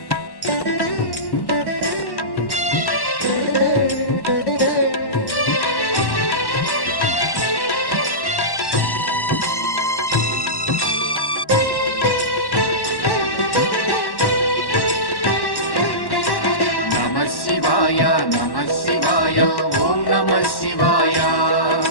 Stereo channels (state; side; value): late; right; 1.1 ms